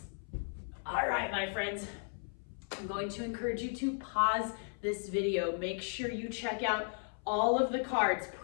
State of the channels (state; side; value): silent; right; 54 dB below the other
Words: All right, my friends. I'm going to encourage you to pause this video. Make sure you check out all of the cards.